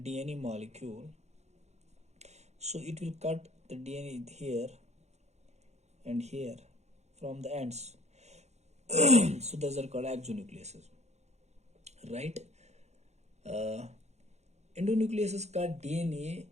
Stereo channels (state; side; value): late; left; 0.32 ms